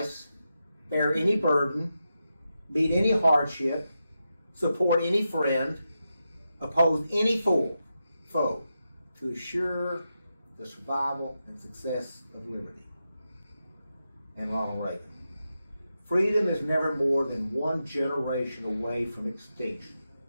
bear any burden, meet any hardship, support any friend, oppose any foe, to assure the survival and success of liberty. And Ronald Reagan. Freedom is never more than one generation away from extinction.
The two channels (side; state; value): both; inverted; correlation -0.88